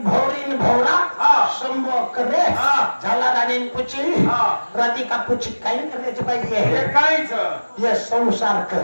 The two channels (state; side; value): inverted; both; correlation -1.00